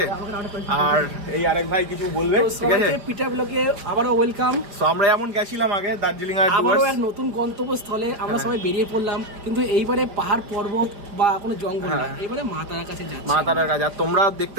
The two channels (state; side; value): late; left; 4.9 ms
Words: আর এই আরেক ভাই কিছু বলবে, ঠিক আছে। পিটিআর ব্লগে আবারও ওয়েলকাম। তো আমরা এমন গেছিলাম আগে দার্জিলিং এর আবারও এক নতুন গন্তব্যস্থলে আমরা সবাই বেরিয়ে পড়লাম, কিন্তু এইবারে পাহাড় পর্বত বা কোনো জঙ্গল না, এইবারে মা তারার কাছে যাচ্ছি। মা তারার কাছে। আর তোমরা